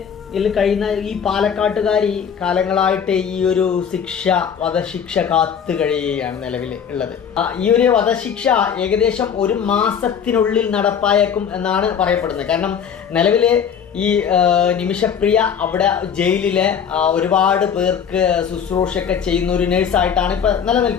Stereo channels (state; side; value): quieter; right; 7.6 dB